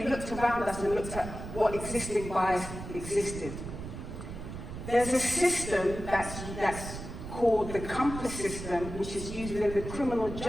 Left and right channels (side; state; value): right; noise; rumble, 9 dB below the sound